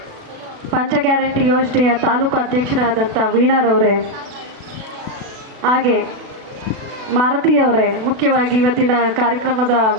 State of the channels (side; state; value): left; late; 36 ms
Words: ಪಂಚ ಗ್ಯಾರಂಟಿ ಯೋಜನೆಯ ತಾಲೂಕು ಅಧ್ಯಕ್ಷರಾದಂಥ ವೀಣಾರವರೇ, ಹಾಗೆ ಮಾರುತಿಯವರೇ, ಮುಖ್ಯವಾಗಿ ಇವತ್ತಿನ ಕಾರ್ಯಕ್ರಮದ